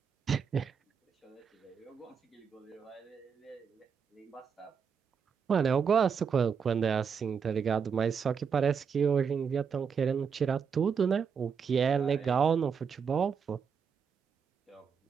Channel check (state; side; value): quieter; left; 6.5 dB